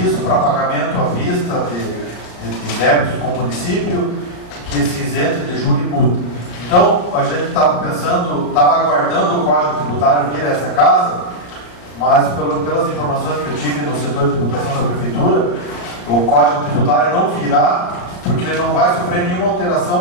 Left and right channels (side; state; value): right; late; 34 ms